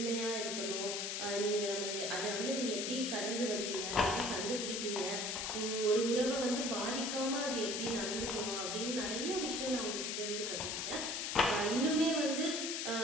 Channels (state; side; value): noise; left; hiss, 2 dB below the sound